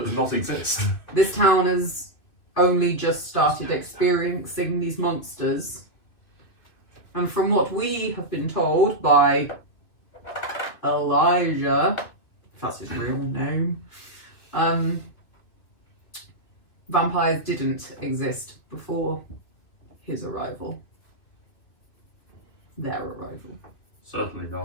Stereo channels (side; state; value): right; late; 2.9 ms